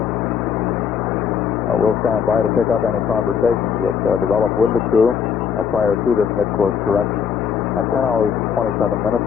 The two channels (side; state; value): right; quieter; 7.2 dB